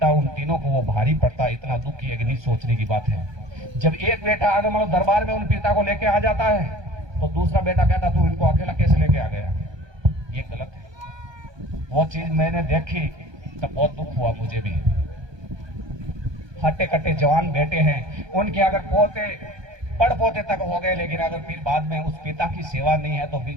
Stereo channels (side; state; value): left; late; 1.2 ms